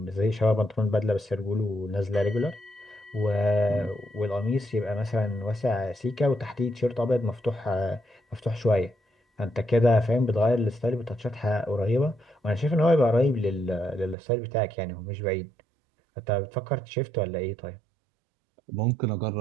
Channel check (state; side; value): drops out; left; at 14.2 s